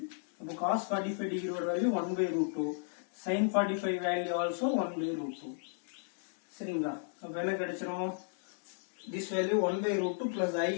அப்போ cos 45 டிகிரியோட value 1 by root 2. sin 45 value also 1 by root 2. சரிங்களா? அப்ப என்ன கிடைச்சிரும், this value 1 by root 2 plus I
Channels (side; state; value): right; silent; digital silence